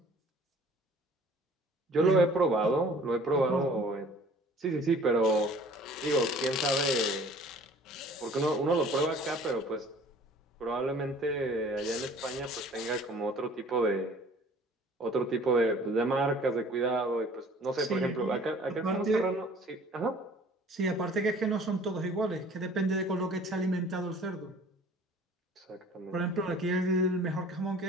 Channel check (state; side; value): normal; both; correlation 0.50